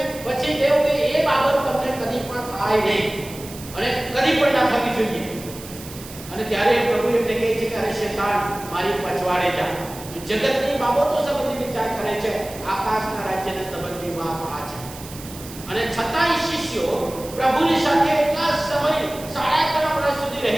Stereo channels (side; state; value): right; noise; hiss, 15 dB below the sound